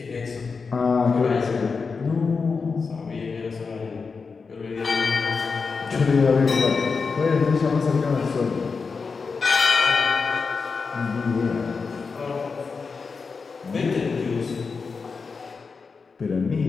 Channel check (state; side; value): quieter; right; 4.9 dB